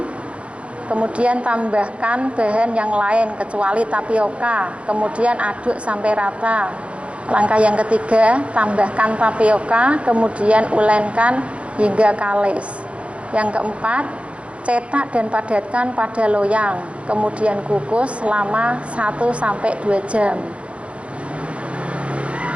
kemudian tambahkan bahan yang lain kecuali tapioka, kemudian aduk sampai rata. Langkah yang ketiga, tambahkan tapioka, kemudian ulenkan hingga kalis. Yang keempat, cetak dan padatkan pada loyang, kemudian kukus selama 1-2 jam.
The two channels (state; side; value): late; left; 0.061 ms